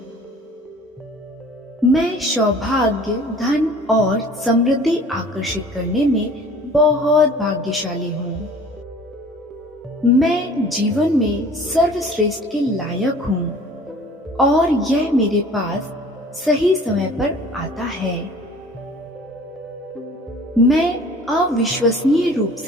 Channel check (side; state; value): both; normal; correlation 0.48